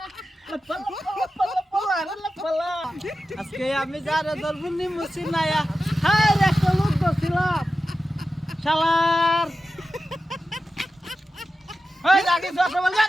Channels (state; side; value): normal; both; correlation 0.92